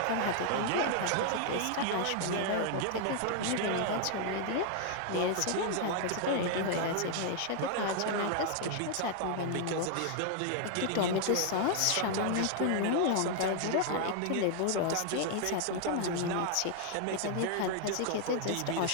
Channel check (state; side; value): different; both; correlation 0.00